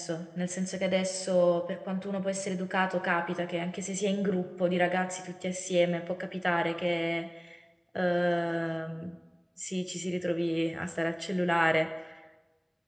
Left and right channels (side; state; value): both; identical; correlation 1.00